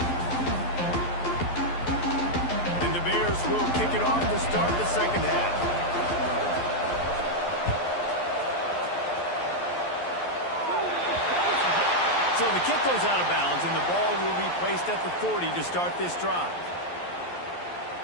And the Bears will kick it off to start the second half. So the kick goes out of bounds, and the ball will be placed at the 40 to start this drive.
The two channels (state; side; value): late; right; 11 ms